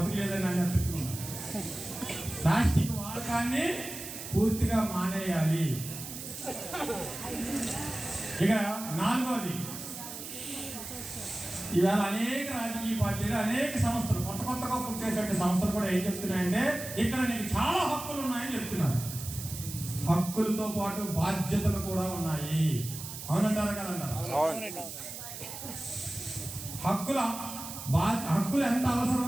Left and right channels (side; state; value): right; noise; hiss, 9 dB below the sound